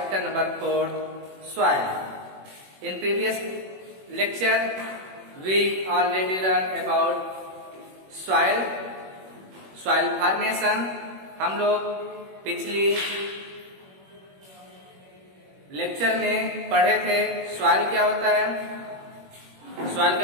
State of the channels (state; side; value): late; left; 21 ms